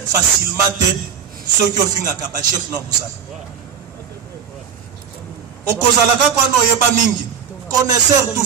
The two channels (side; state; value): left; quieter; 7.6 dB